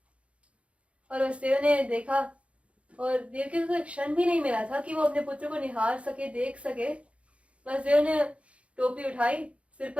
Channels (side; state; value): left; late; 0.062 ms